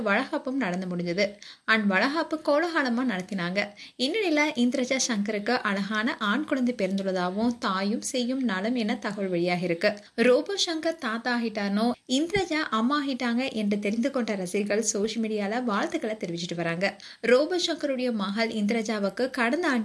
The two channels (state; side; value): identical; both; correlation 1.00